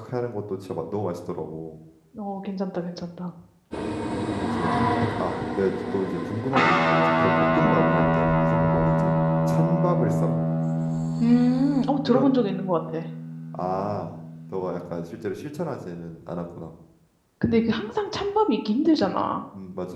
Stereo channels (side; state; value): both; identical; correlation 1.00